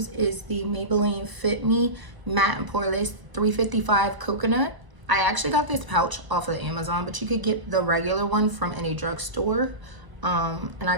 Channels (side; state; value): left; late; 1.0 ms